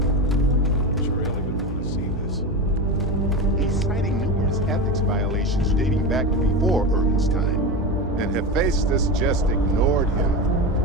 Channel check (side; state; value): both; normal; correlation 0.21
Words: Referral would want to see this. He's citing numerous ethics violations dating back to before Urban's time, and Hephaestus just ignored him.